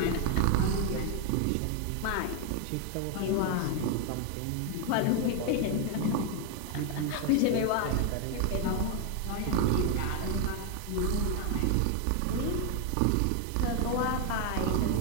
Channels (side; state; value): both; different; correlation 0.01